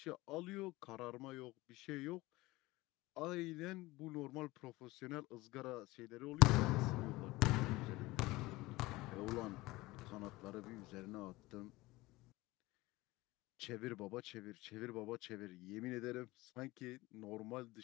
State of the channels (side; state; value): right; quieter; 20.2 dB